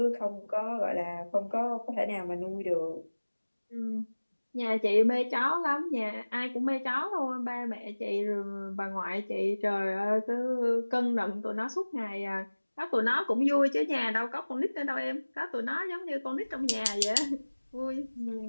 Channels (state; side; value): inverted; both; correlation -1.00